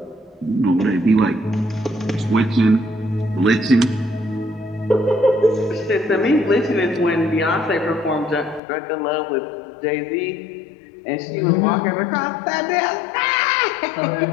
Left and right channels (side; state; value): right; drops out; at 8.6 s